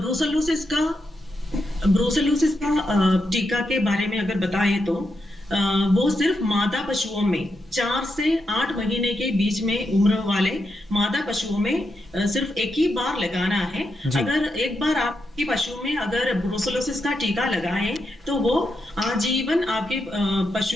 का टीका के बारे में अगर बताएं तो वो सिर्फ मादा पशुओं में 4 से 8 महीने के बीच में उम्र वाले मादा पशुओं में सिर्फ एक ही बार लगाना है। अगर एक बार आपके पशु में अगर ब्रूसेलोसिस का टीका लगाएं तो वो आजीवन आपके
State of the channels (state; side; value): normal; both; correlation 0.84